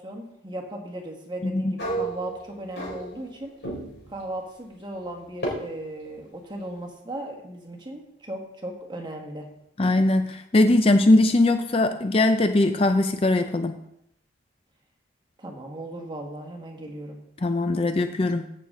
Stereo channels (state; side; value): normal; both; correlation 0.74